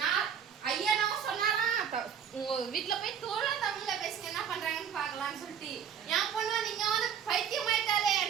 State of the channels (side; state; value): left; quieter; 8.1 dB